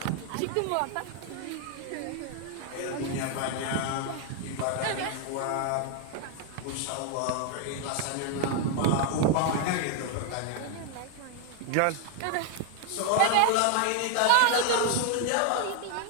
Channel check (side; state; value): both; different; correlation 0.00